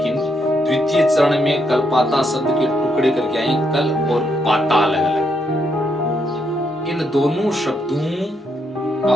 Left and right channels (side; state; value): both; normal; correlation 0.77